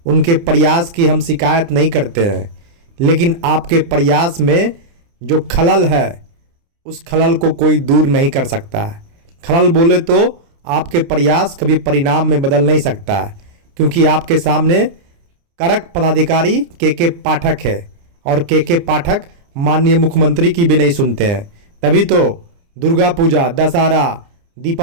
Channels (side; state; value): left; late; 29 ms